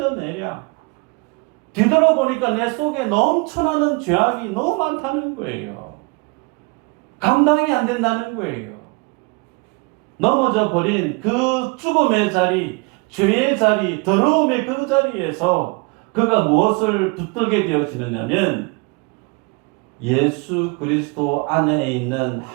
뒤돌아보니까 내 속에 넘쳐나는 죄악이 너무 많다는 거예요. 감당이 안 된다는 거예요. 넘어져 버린 그 죽음의 자리, 죄의 자리, 더러움의 그 자리에서 그가 무엇을 붙들게 되어지느냐면 예수 그리스도 안에 있는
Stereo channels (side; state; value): left; quieter; 29.5 dB